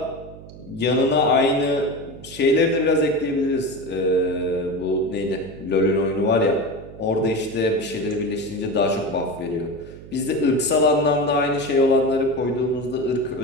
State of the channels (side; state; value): right; noise; hum, 17 dB below the sound